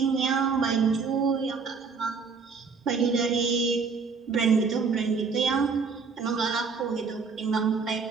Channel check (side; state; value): left; quieter; 5.1 dB